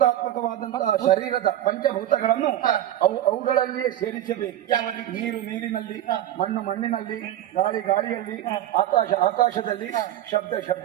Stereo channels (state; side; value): quieter; left; 12.5 dB